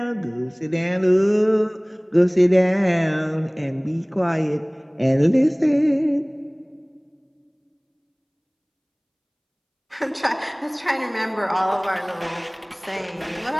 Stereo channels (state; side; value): identical; both; correlation 1.00